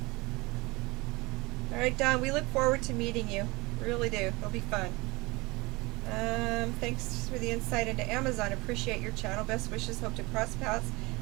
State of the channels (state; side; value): quieter; left; 23.6 dB